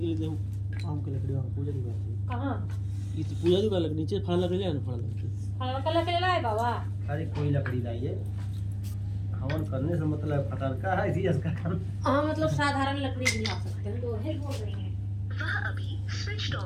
लिए जाऊँ आम की लकड़ी वहाँ पूजा की बात है। कहाँ ये तो पूजा की बात लकड़ी नीचे फल लकड़ी ले आना फल लकड़ी। फल का लकड़ी लाए बाबा। अरे कोई लकड़ी लाइए। हवन करने से मतलब फटरका है इसी इसका काम। हाँ मतलब साधारण लकड़ी भी ला सकते हैं। तो है बोल रही हैं वह अभी स्विच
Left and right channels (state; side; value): identical; both; correlation 1.00